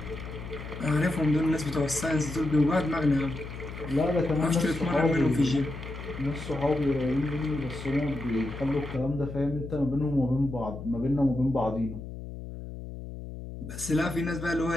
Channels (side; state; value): left; noise; hum, 10 dB below the sound